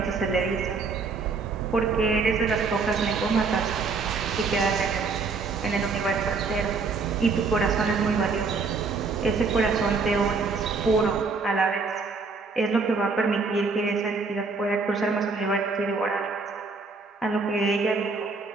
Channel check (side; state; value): left; quieter; 4.5 dB